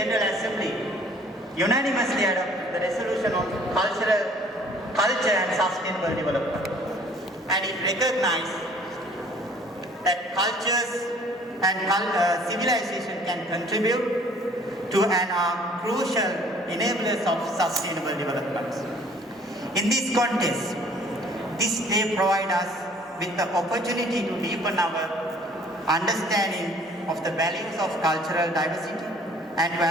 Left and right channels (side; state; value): both; normal; correlation 0.55